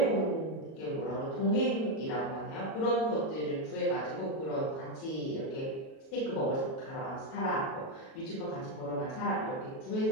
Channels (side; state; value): right; late; 37 ms